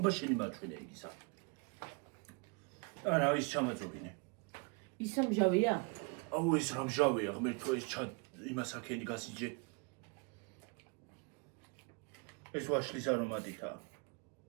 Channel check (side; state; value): left; quieter; 32.0 dB